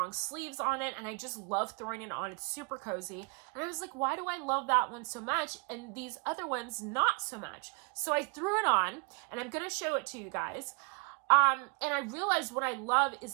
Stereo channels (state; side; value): quieter; left; 33.4 dB